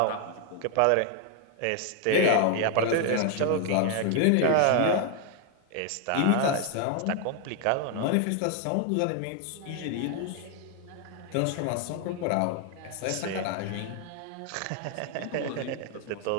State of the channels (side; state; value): both; different; correlation 0.00